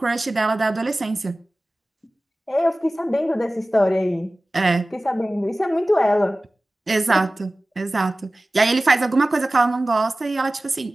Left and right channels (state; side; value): normal; both; correlation 0.97